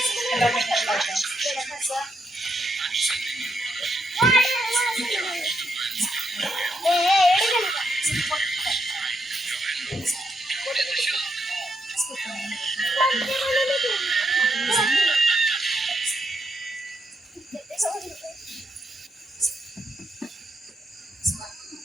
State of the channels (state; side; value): normal; both; correlation 0.79